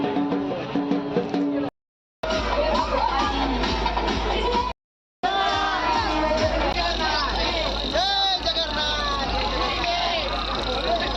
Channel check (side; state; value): both; identical; correlation 1.00